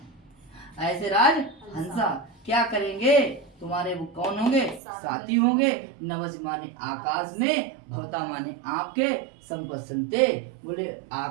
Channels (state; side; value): drops out; left; at 4.8 s